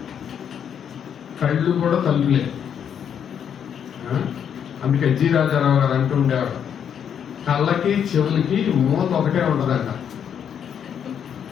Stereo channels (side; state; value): right; quieter; 8.3 dB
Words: కళ్ళు కూడా తలుపులే. అందుకే జి రాజారావు గారు అంటూ ఉండేవాడు, కళ్ళకి చెవులకి మూత ఒకటే ఉంటుందంట.